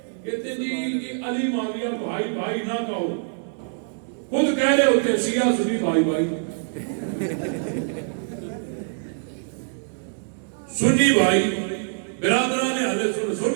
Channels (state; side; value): silent; left; digital silence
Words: کہتے جی کہ علی معاویہ بھائی بھائی نہ کہو. خود کہہ رہے ہوتے شیعہ سنی بھائی بھائی. سنی بھائی برادران اہل سنت